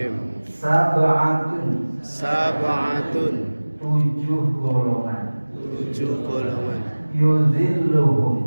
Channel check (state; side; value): inverted; both; correlation -1.00